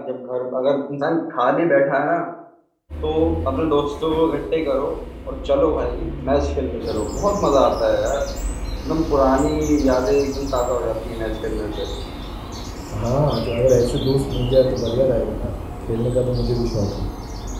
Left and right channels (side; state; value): both; identical; correlation 1.00